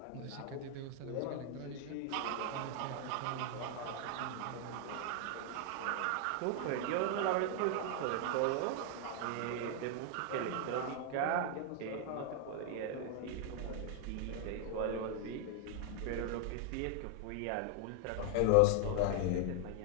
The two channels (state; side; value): different; both; correlation 0.00